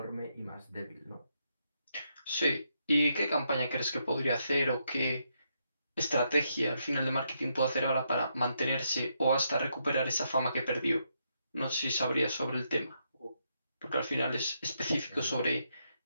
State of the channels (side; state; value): both; inverted; correlation -0.79